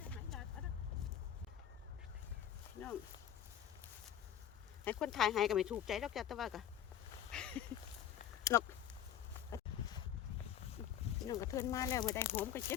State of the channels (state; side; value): quieter; right; 10.1 dB